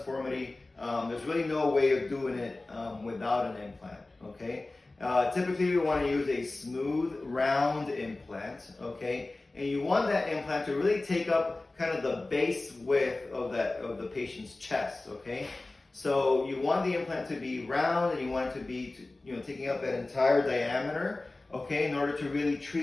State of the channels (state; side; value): quieter; right; 3.1 dB